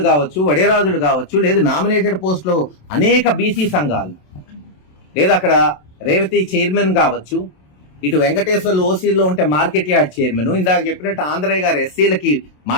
కావచ్చు, వడేరాజులు కావచ్చు, లేదు నామినేటెడ్ పోస్టులో అనేక బీసీ సంఘాలు, లేదు అక్కడ రేవతి చైర్మన్ కావచ్చు, ఇటు వెంకటేశ్వర్లు ఓసీలో ఉంటే మార్కెట్ యార్డ్ చైర్మన్, ఇందాక చెప్పినట్టు ఆంధ్రయ్య గారు ఎస్సీలకి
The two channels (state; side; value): late; right; 27 ms